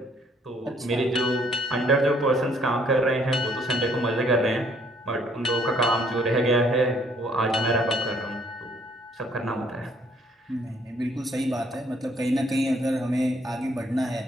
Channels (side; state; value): both; normal; correlation 0.64